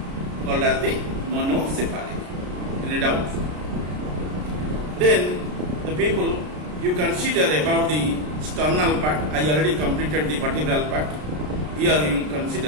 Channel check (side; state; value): left; late; 33 ms